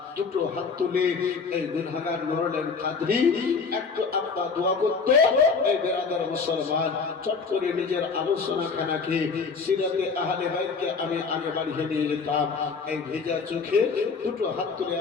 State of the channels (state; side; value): quieter; right; 5.0 dB